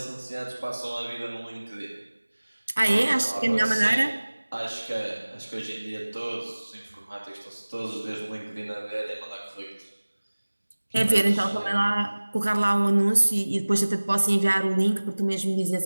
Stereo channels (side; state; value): both; inverted; correlation -1.00